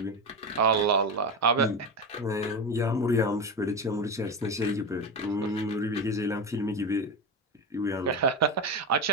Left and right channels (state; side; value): normal; both; correlation 0.18